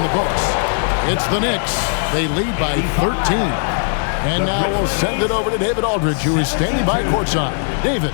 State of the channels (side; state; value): right; silent; digital silence